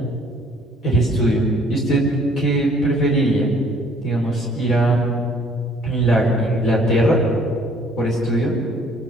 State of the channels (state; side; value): normal; both; correlation 0.59